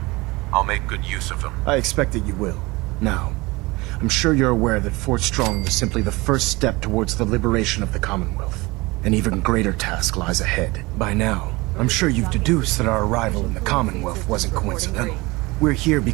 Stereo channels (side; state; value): left; quieter; 23.0 dB